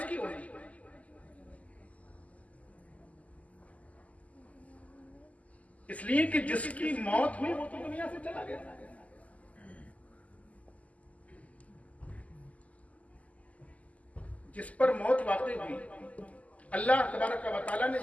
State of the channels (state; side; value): late; right; 0.071 ms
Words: होगी? इसलिए कि जिसकी मौत हुई वो तो दुनिया से चला गया। जिस पर मौत वाक़ई हुई, अल्लाह तबारक व तआला ने